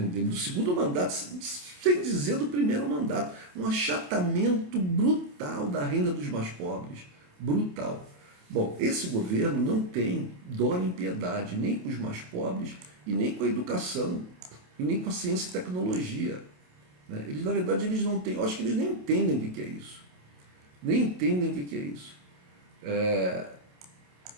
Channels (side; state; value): left; late; 28 ms